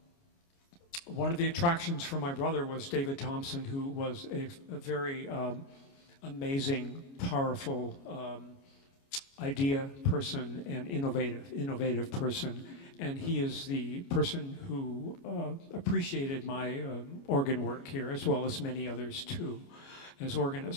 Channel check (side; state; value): right; late; 29 ms